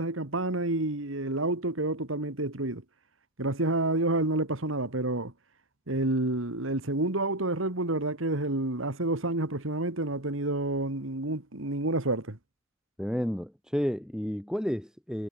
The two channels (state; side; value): normal; both; correlation 0.16